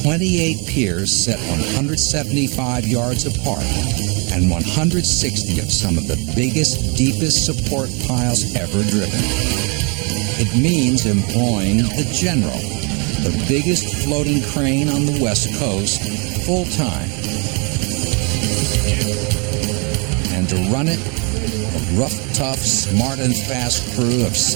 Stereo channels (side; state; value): left; quieter; 33.5 dB